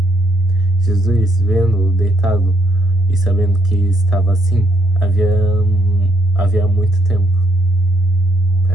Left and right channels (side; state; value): both; normal; correlation 0.72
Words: Jesus, vendo-o deitado e sabendo que estava assim, havia muito tempo.